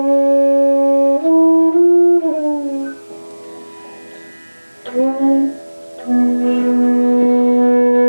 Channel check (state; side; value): inverted; both; correlation -1.00